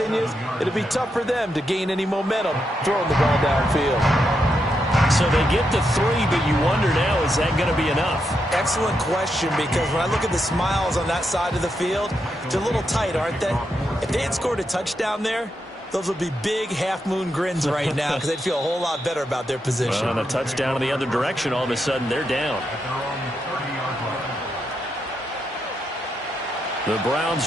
it'll be tough for them to gain any momentum throwing the ball downfield. So they get the 3, but you wonder now, is that going to be enough? Excellent question, because when I look at the smiles on that side of the field, they're a little tight, aren't they? If they had scored a touchdown there, those would be big half-moon grins right now because they'd feel a whole lot better about their position. Well, on a touchdown in the other direction, all of a sudden they're down. The Browns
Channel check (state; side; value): normal; both; correlation 0.83